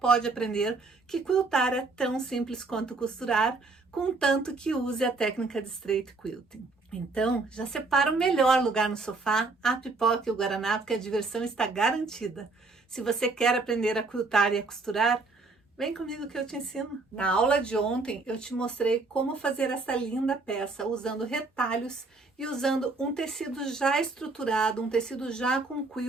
aprender que quiltar é tão simples quanto costurar, contanto que use a técnica de straight quilting. Então, já separa o melhor lugar no sofá, a pipoca e o guaraná, porque a diversão está garantida. Se você quer aprender a quiltar e a costurar, vem comigo que eu te ensino. Na aula de ontem eu te mostrei como fazer essa linda peça usando retalhos e usando um tecido já estruturado, um tecido já com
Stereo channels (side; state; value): left; quieter; 3.7 dB